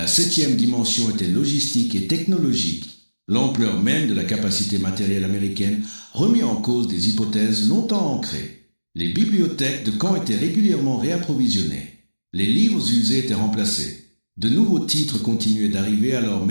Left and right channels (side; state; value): both; inverted; correlation -1.00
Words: septième dimension était logistique et technologique. L'ampleur même de la capacité matérielle américaine remit en cause des hypothèses longtemps ancrées. Les bibliothèques de camp étaient régulièrement réapprovisionnées. Les livres usés étaient remplacés. De nouveaux titres continuaient d'arriver alors